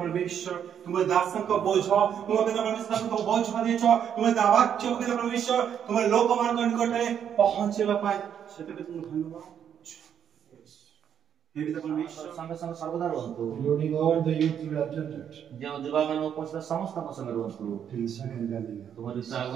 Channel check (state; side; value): quieter; left; 8.7 dB